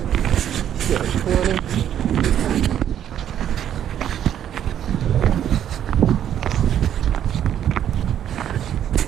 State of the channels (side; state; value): left; quieter; 10.2 dB